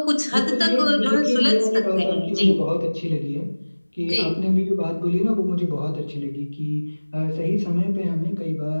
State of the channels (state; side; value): inverted; both; correlation -1.00